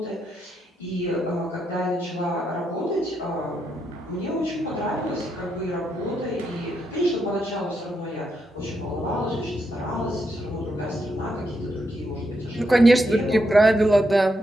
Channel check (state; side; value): normal; both; correlation 0.81